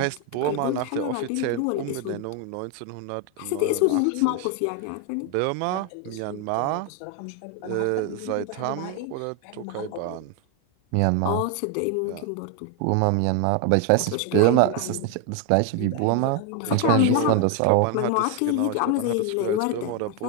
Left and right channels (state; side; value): different; both; correlation 0.01